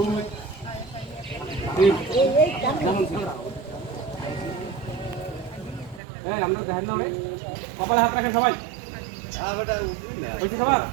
3 যেমন ছিল। এই আমরা দেখেন না ভাই কপালে হাত রাখেন সবাই। বেটা উঠবি না হইছে সবার।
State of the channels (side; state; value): left; drops out; at 6.0 s